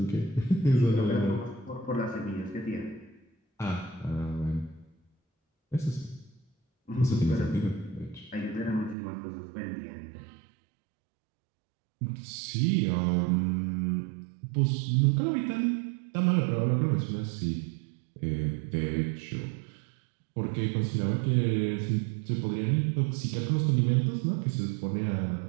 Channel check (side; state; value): left; drops out; at 9.0 s